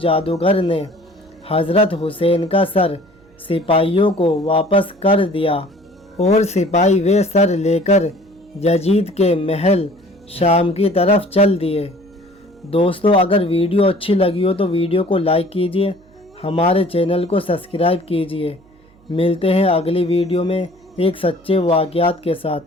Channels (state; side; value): noise; right; hum, 30 dB below the sound